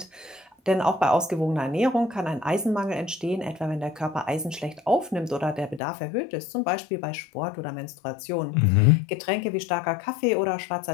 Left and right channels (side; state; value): right; drops out; at 5.8 s